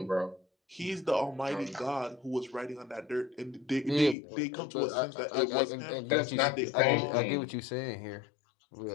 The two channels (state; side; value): drops out; right; at 4.2 s